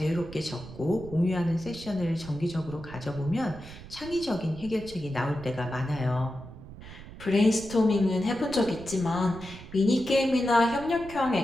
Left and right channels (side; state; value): right; noise; rumble, 15 dB below the sound